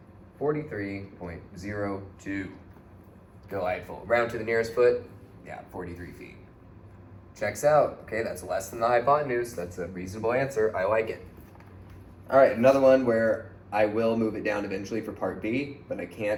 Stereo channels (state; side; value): identical; both; correlation 1.00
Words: 43.02. Delightful. Round to the nearest foot, yeah, 43 feet. Checks out. Okay, that's less than the hypotenuse. That's a reasonable answer. I like it. All right, another one where I will move it down eventually for part B, but I